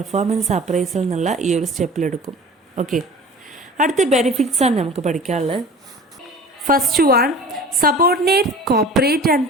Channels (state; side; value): normal; both; correlation 0.41